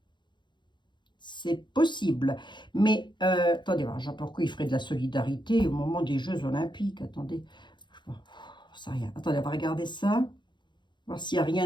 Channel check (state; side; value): late; right; 0.22 ms